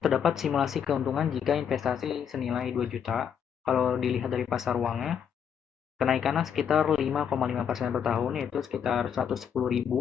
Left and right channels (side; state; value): right; quieter; 8.0 dB